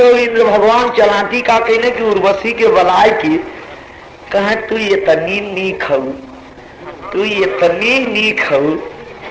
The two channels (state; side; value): identical; both; correlation 1.00